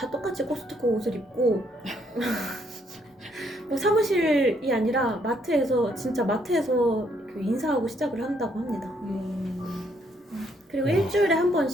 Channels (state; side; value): normal; both; correlation 0.70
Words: 똑같이 코스트코 옷을 입고 뭐 사무실이 아니라 진짜 마트에서 그 인사하고 시작을 한다고 합니다. 그리고 일주일에 한